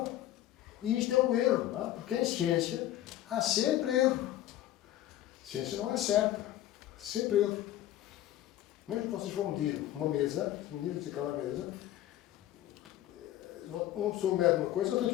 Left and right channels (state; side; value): quieter; right; 13.3 dB